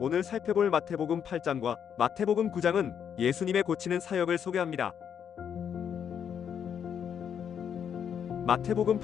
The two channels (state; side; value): quieter; right; 8.2 dB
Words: 살펴볼 마태복음 8장과 마태복음 9장은 예수님의 고치는 사역을 소개합니다. 마태복음